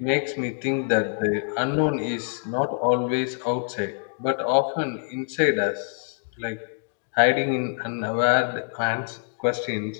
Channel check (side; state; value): right; silent; digital silence